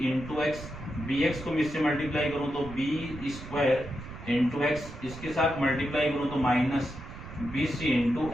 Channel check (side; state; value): right; noise; rumble, 13 dB below the sound